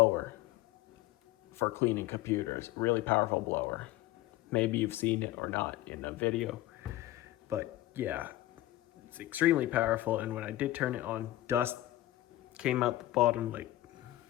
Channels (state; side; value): quieter; right; 15.8 dB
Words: for cleaning computers. Really powerful blower. Maybe you've seen it or not in a video. But yeah, it's extremely powerful. And when I did turn it on, dust came out the bottom, like,